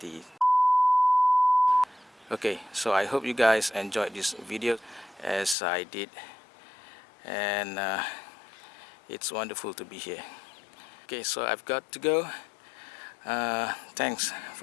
okay, so I hope you guys enjoyed this video as I did, and it's wonderful to be here. Okay, so I've got to go. Thanks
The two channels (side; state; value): right; drops out; at 5.6 s